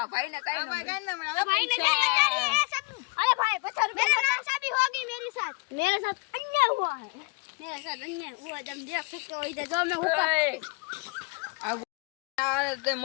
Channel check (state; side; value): quieter; right; 29.6 dB